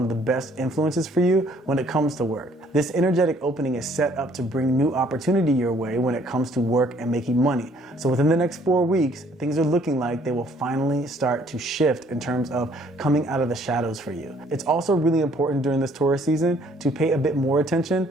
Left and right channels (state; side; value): normal; both; correlation 0.62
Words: of the best influences for you when it comes to work. This energetic opening is set up to bring new opportunity your way when it comes to work and making money. So within the next 4 weeks, things are looking like they will finally start to shift in terms of coming out of the shadows for you. It's also really important during this Taurus season to pay a bit more attention